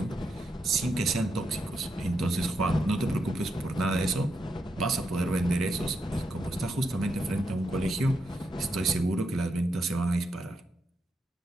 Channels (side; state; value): both; normal; correlation 0.82